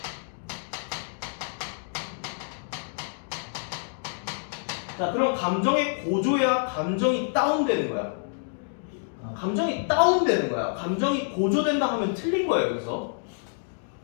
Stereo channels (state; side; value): silent; right; digital silence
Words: 자 그럼 감정의 고조야 감정이 다운되는 거야. 감정이 다운되는 거야. 감정이 고조된다 하면 틀린 거예요. 여기서